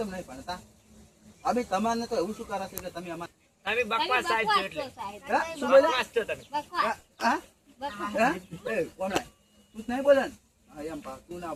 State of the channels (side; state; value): both; identical; correlation 1.00